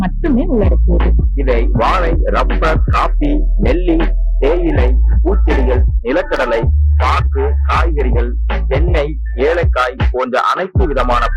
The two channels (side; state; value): both; identical; correlation 1.00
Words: மட்டுமே உள்ளடக்கியது. இதை வாழை, ரப்பர், காபி, நெல்லி, தேயிலை, பூச்செடிகள், நிலக்கடலை, பாக்கு, காய்கறிகள், தென்னை, ஏலக்காய் போன்ற அனைத்து விதமான